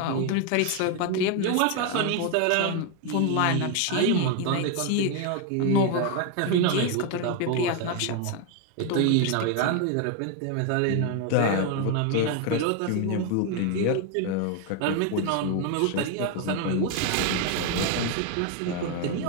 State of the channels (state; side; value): different; both; correlation 0.01